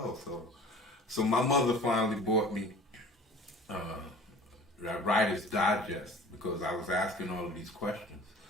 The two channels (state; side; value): normal; both; correlation 0.44